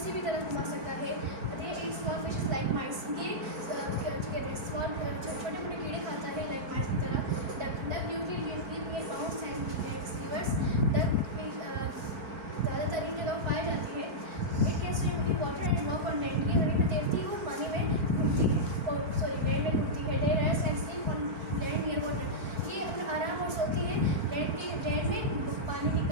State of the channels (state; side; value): late; left; 4.5 ms